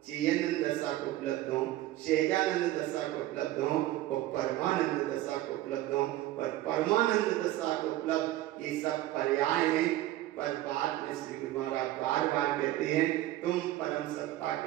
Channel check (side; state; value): left; quieter; 15.4 dB